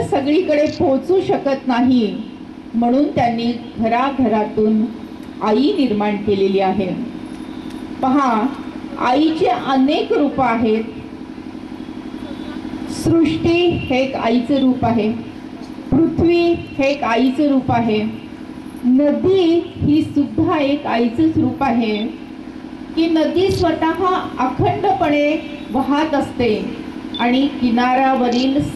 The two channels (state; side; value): identical; both; correlation 1.00